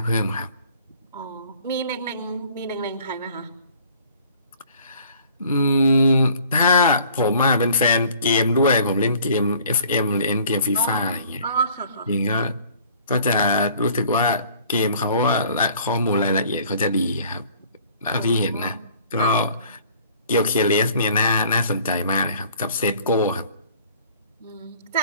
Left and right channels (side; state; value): both; inverted; correlation -0.54